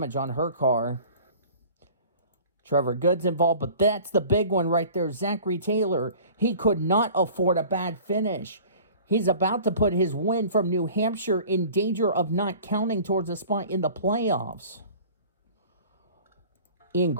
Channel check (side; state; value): both; inverted; correlation -0.45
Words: on her car. Trevor Good's involved, but that's the big one right there. Zachary Taylor. He could not afford a bad finish. He's about to put his win from New Hampshire in danger of not counting towards a spot in the playoffs. Ian